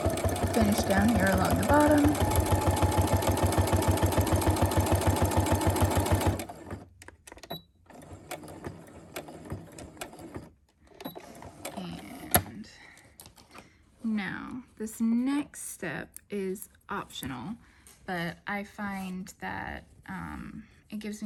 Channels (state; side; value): identical; both; correlation 1.00